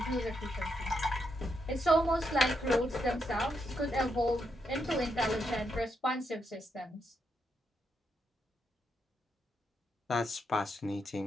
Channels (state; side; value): normal; both; correlation 0.81